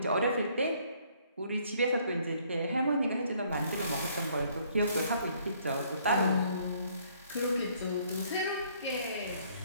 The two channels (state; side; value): inverted; both; correlation -0.64